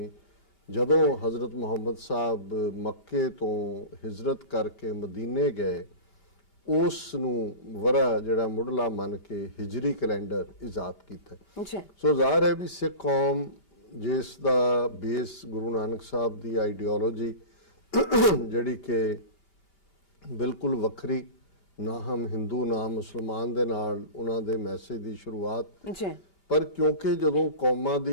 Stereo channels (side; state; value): right; late; 2.8 ms